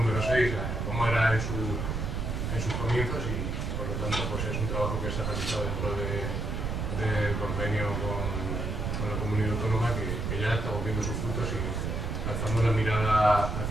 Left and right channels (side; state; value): right; noise; rumble, 2 dB below the sound